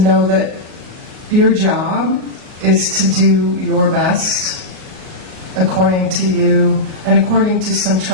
know that your job is to do your best according to you and according to some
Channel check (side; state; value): left; late; 38 ms